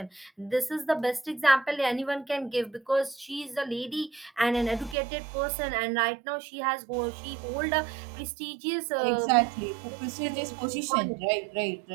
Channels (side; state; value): left; drops out; at 5.0 s